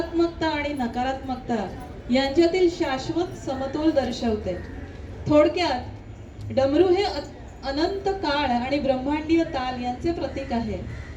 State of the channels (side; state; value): both; identical; correlation 1.00